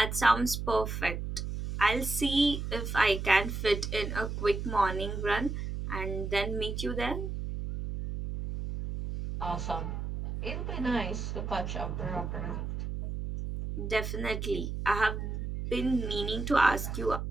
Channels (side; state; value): right; noise; hum, 4 dB below the sound